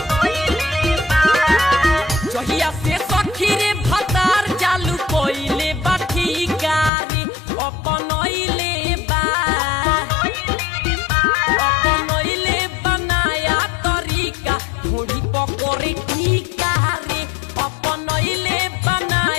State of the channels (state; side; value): drops out; right; at 6.9 s